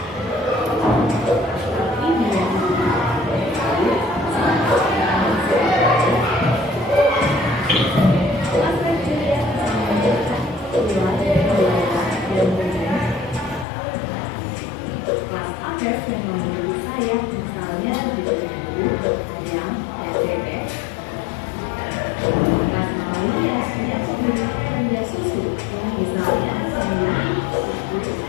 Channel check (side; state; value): right; drops out; at 13.7 s